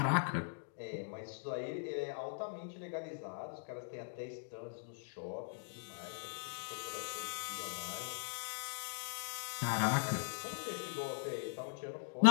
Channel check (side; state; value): right; silent; digital silence